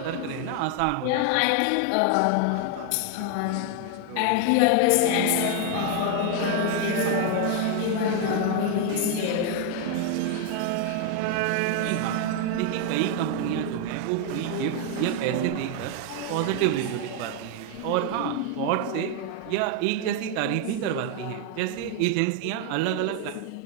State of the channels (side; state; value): both; different; correlation 0.00